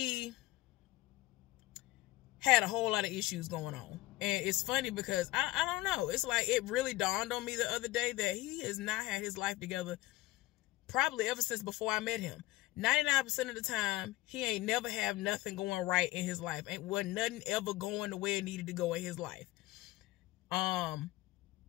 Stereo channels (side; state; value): right; quieter; 18.1 dB